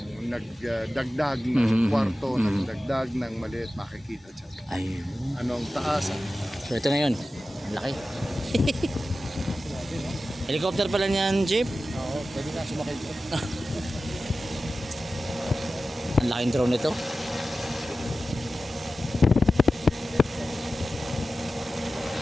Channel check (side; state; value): both; normal; correlation 0.94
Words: nagdagdag ng Mhm. kwarto, Mhm. nagdagdag ng maliit, makikita dyan. Ayun. Anong taas? So ito na yun. Ang laki. Helicopter pala niyan, Chip. Oo, pwede na sumakay dyan. Ang laking drone nito.